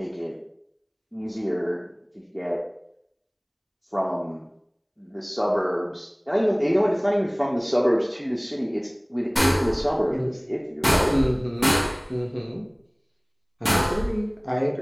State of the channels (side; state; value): both; identical; correlation 1.00